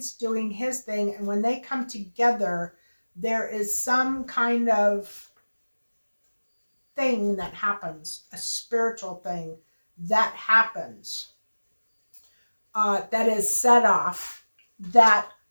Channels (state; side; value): inverted; both; correlation -1.00